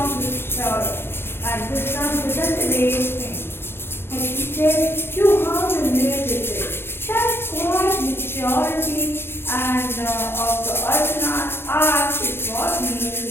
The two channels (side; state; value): right; late; 0.11 ms